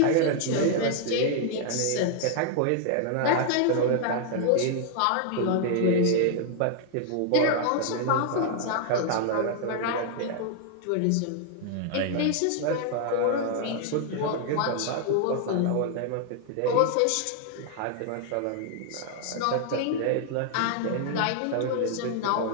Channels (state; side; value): different; both; correlation 0.00